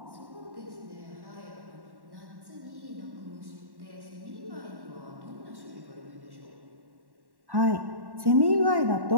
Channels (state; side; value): late; left; 1.1 ms